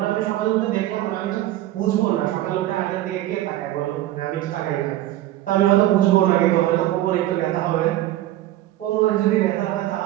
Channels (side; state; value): left; quieter; 14.6 dB